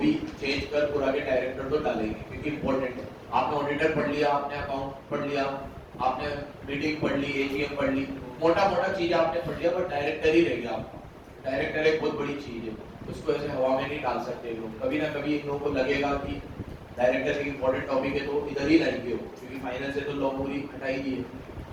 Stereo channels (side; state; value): both; identical; correlation 1.00